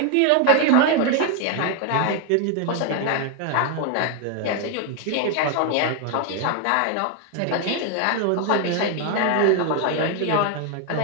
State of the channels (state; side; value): different; both; correlation 0.00